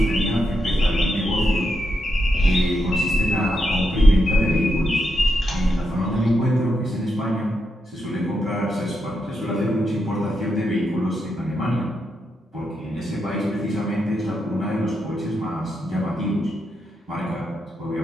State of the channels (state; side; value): normal; both; correlation 0.84